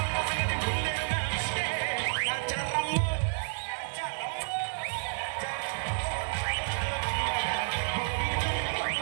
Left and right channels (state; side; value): silent; left; 58 dB below the other